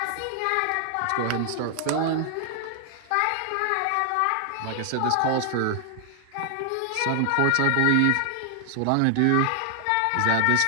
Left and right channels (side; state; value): both; different; correlation 0.00